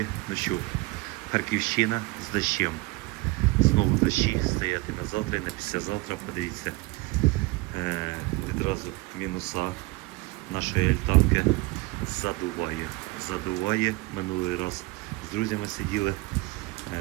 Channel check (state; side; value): quieter; left; 22.8 dB